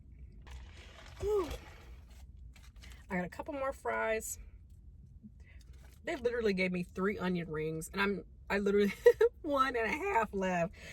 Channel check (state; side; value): identical; both; correlation 1.00